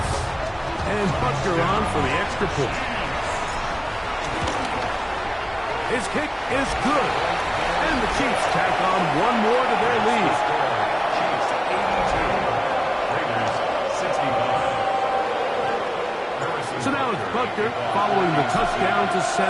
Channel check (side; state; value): both; identical; correlation 1.00